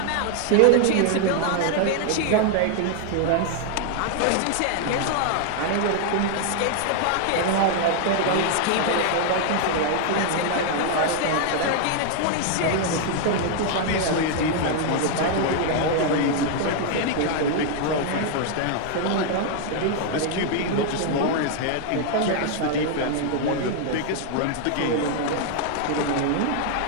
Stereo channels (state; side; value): different; both; correlation 0.00